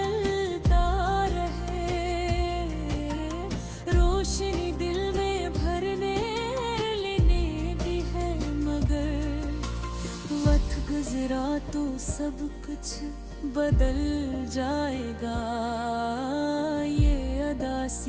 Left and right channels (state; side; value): identical; both; correlation 1.00